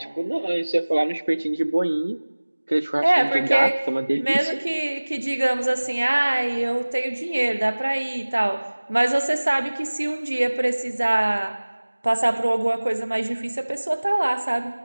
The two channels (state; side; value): inverted; both; correlation -1.00